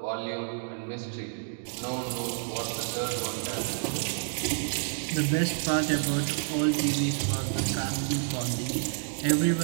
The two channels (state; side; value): silent; left; digital silence